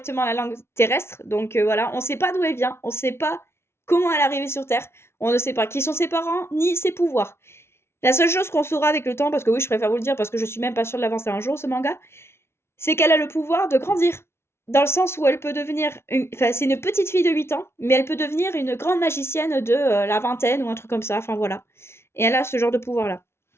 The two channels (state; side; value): late; right; 0.12 ms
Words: la langue terrestre. Donc voilà, on ne sait pas d'où elle vient, on ne sait pas comment elle est arrivée sur Terre, on ne sait pas qui sont ses parents, ni ses pouvoirs. La seule chose qu'on saura avec le temps, parce que oui, je préfère vous le dire, parce que je suis même pas sûre de l'avancer un jour, ce manga, c'est qu'elle a le pouvoir de grandir. Dans le sens où elle peut devenir. Enfin, c'est une petite fille de 8 ans, mais elle peut devenir une grande magicienne de la vingtaine ou un truc comme ça. Enfin voilà. Et elle a ce genre de pouvoir-là.